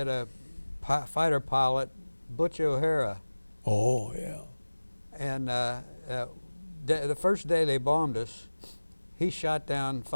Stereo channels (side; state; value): both; inverted; correlation -1.00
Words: a fighter pilot, Butch O'Hara. Oh, yeah. And the first day they bombed us, he shot down